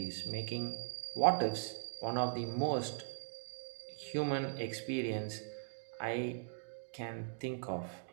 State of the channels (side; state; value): left; silent; digital silence